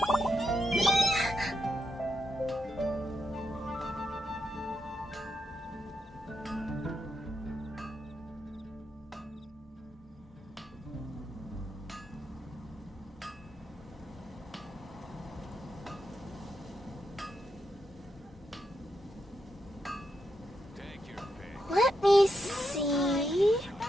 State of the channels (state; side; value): normal; both; correlation 0.84